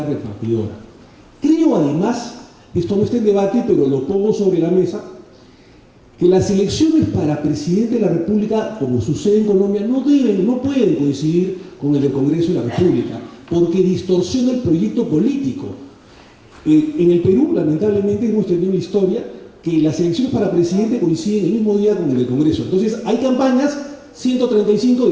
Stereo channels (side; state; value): both; identical; correlation 1.00